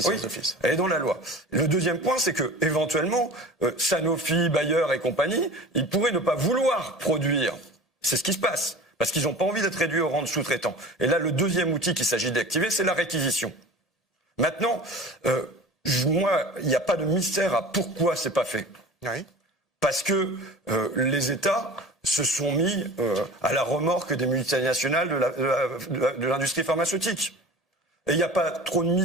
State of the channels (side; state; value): both; normal; correlation 0.38